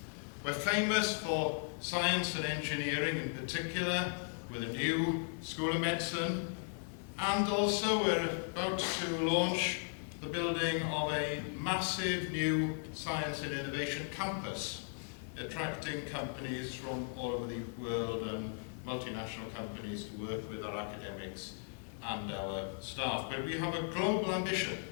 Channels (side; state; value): right; silent; 53 dB below the other